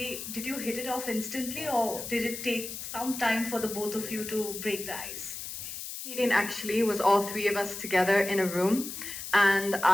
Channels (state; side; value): noise; left; hiss, 8 dB below the sound